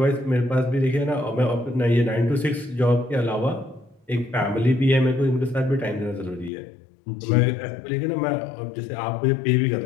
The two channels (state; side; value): drops out; right; at 6.5 s